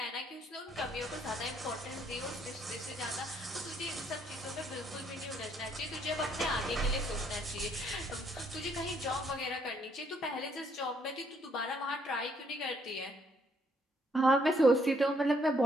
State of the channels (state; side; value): normal; both; correlation 0.69